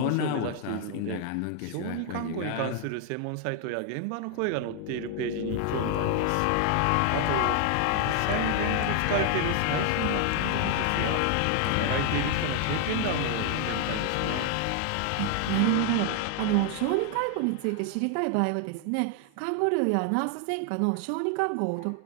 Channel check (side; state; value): both; different; correlation 0.00